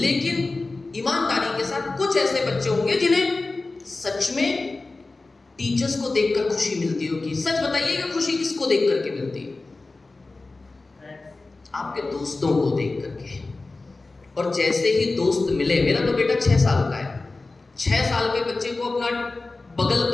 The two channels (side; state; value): right; quieter; 3.4 dB